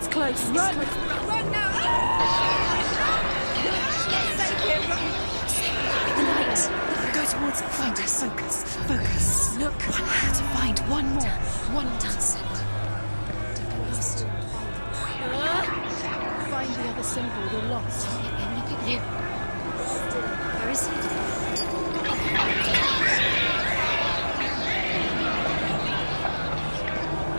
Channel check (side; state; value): both; inverted; correlation -1.00